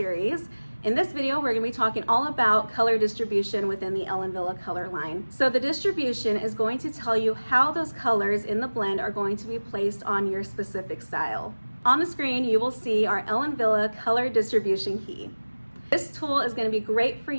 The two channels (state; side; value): inverted; both; correlation -1.00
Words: In this video, we're going to be talking all about color distribution within the Ellen Wille Color line. So the distribution is going to tell you how those colors in the blend are going to be placed on your specific style. On the screen, you will see our Ellen Wille Color Distribution Key. This tool is going to be great for